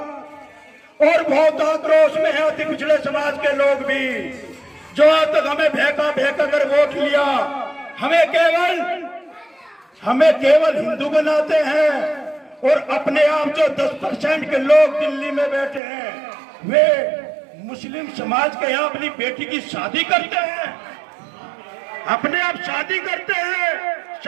और बहुत आक्रोश में है अति पिछड़े समाज के लोग भी, जो आज तक हमें भेका कर वोट लिया, हमें केवल हिंदू बनाते हैं। और अपने आप जो 10% के लोग दिल्ली में बैठे हैं, वे मुस्लिम समाज के यहाँ अपनी बेटी की शादी करते हैं, अपने आप शादी करते हैं,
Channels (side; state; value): left; drops out; at 15.8 s